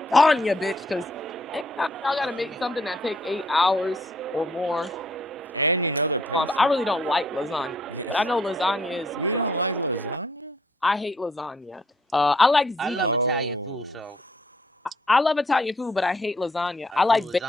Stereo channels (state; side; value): normal; both; correlation 0.66